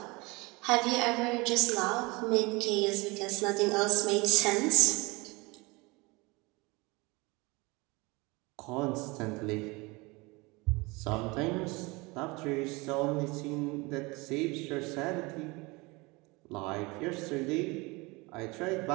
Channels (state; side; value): quieter; left; 25.1 dB